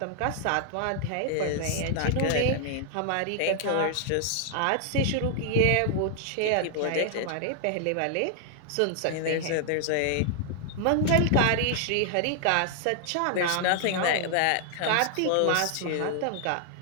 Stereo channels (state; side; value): different; both; correlation 0.00